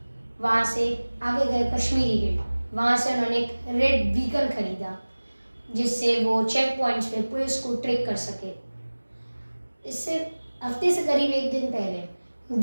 वहाँ से आगे गए कश्मीरी गेट। वहाँ से उन्होंने एक रेड व्हीकल खरीदा जिससे वो चेक पॉइंट्स पे पुलिस को ट्रैक कर सके। इससे हफ्ते से करीब 1 दिन पहले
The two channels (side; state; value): both; inverted; correlation -1.00